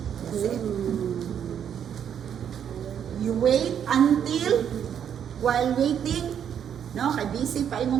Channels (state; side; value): quieter; left; 8.7 dB